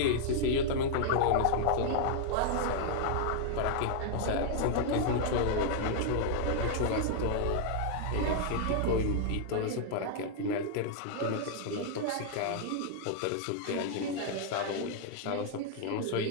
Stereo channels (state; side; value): different; both; correlation -0.01